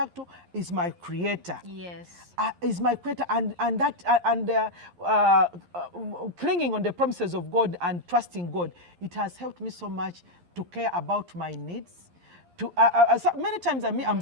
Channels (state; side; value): late; left; 11 ms